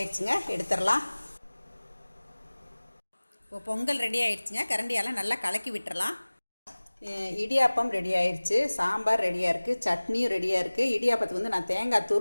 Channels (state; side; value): inverted; both; correlation -1.00